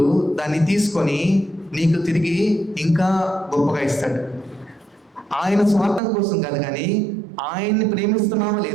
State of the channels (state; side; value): drops out; left; at 6.0 s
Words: దాన్ని తీసుకొని నీకు తిరిగి ఇంకా గొప్పగా ఇస్తాడు. ఆయన స్వార్థం కోసం కాదు, కానీ ఆయన్ని ప్రేమిస్తున్నావా